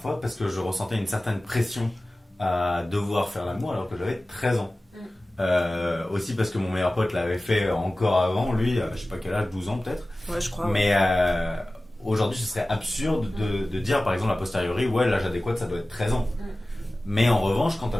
parce que je ressentais une certaine pression à devoir faire l'amour alors que j'avais 13 ans. Aussi parce que mon meilleur pote l'avait fait encore avant, lui, je sais pas quel âge, 12 ans peut-être. Ouais, je crois. Mais aujourd'hui, ce serait absurde de dire par exemple a posteriori, ouais, l'âge adéquat ça doit être 13 ans. Mais en revanche, quand t'as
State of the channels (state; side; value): normal; both; correlation 0.97